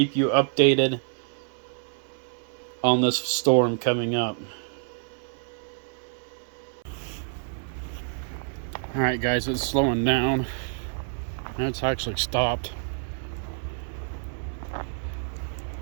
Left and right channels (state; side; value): silent; left; 60 dB below the other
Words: you updated on this storm coming up. Alright guys, it's slowing down. It's actually stopped.